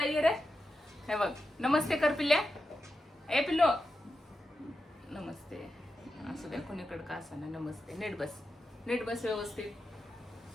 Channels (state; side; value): normal; both; correlation 0.89